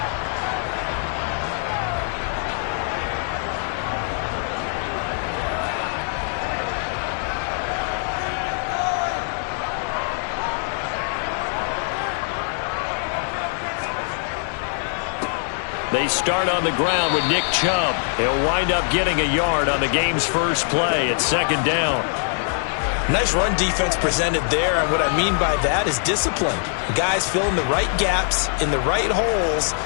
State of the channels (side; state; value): right; silent; 64 dB below the other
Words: They start on the ground with Nick Chubb. He'll wind up getting a yard on the game's first play at second down. Nice run defense presented there, and what I mean by that is discipline. Guys filling the right gaps in the right holes,